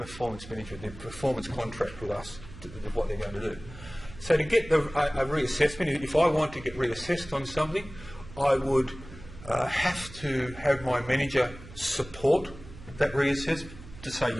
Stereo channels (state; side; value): noise; right; hum, 16 dB below the sound